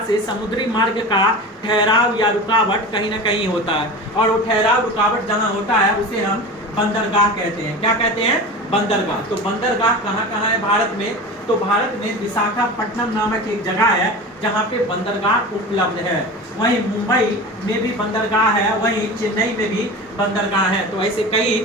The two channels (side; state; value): both; normal; correlation 0.31